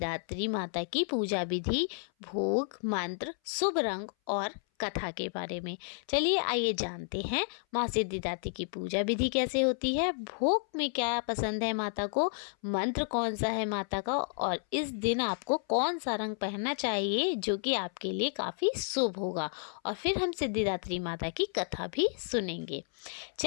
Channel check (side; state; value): right; silent; 57 dB below the other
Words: माता की पूजा विधि, भोग, मंत्र, शुभ रंग और कथा के बारे में। चलिए आइए जानते हैं माँ सिद्धिदात्री की पूजा विधि कैसे होती है, भोग में क्या पसंद है माता को, मंत्र कौन सा है माता का, और इस दिन आपको कौन सा रंग पहनना चाहिए जो कि आपके लिए काफ़ी शुभ होगा। और फिर हम सिद्धिदात्री माता की कथा भी सुनेंगे।